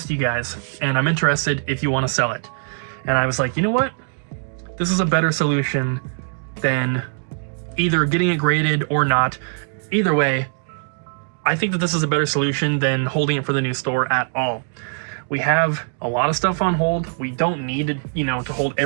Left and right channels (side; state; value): left; silent; digital silence